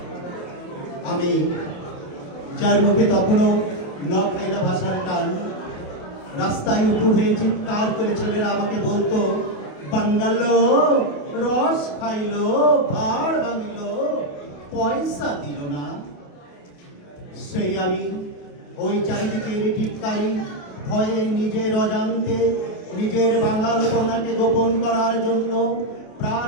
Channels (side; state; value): right; late; 28 ms